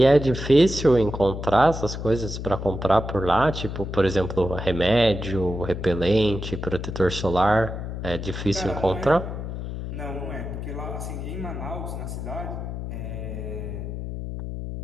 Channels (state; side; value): noise; left; hum, 6 dB below the sound